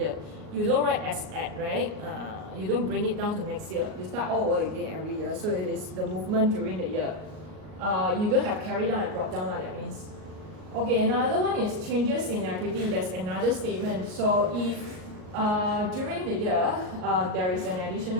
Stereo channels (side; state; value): left; late; 38 ms